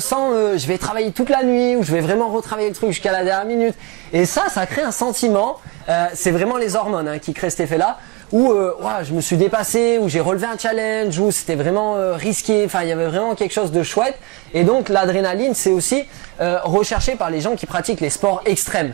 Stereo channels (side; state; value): left; quieter; 24.5 dB